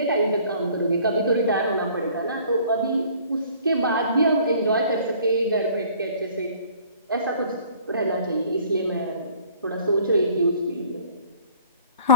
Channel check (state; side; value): inverted; both; correlation -0.53